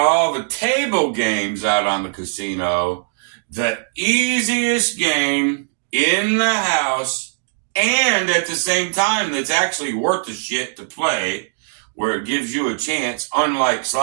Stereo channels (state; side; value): silent; left; digital silence